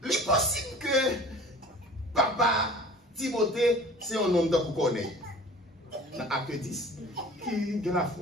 Il est possible que papa Timothée, c'est un homme de connaître. Dans Acte 10, qui a la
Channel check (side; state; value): both; normal; correlation 0.44